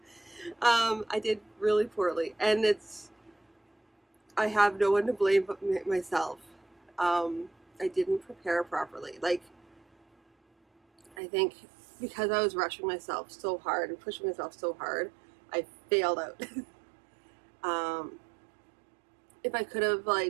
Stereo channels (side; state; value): left; drops out; at 11.2 s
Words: I did really poorly, and I have no one to blame but myself. I didn't prepare properly. I think because I was rushing myself so hard and pushing myself so hard, I failed out. um, if I could have